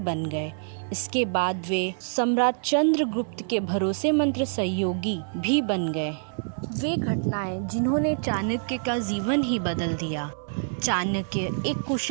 गए। इसके बाद वे सम्राट चंद्रगुप्त के भरोसेमंद सहयोगी भी बन गए। वे घटनाएं जिन्होंने चाणक्य का जीवन ही बदल दिया। चाणक्य एक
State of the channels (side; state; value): left; silent; 58 dB below the other